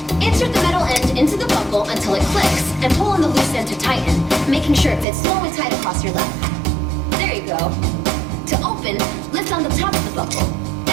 Insert the metal end into the buckle until it clicks, and pull on the loose end to tighten, making sure it fits slowly tight across your lap. There you go. To open, lift it's on the top of the buckle.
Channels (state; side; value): drops out; left; at 5.1 s